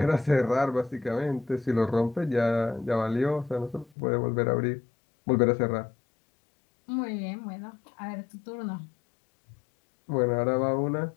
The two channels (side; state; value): right; drops out; at 3.9 s